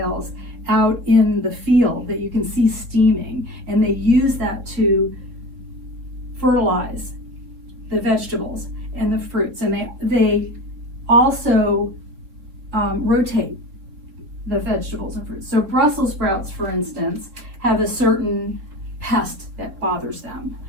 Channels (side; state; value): left; late; 3.4 ms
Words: out in the field that you can see steaming, and they use that to fertilize the vegetables and the fruits. And they also rotate the vegetables and fruits. So Brussels sprouts, for instance, have a certain pest that bothers them.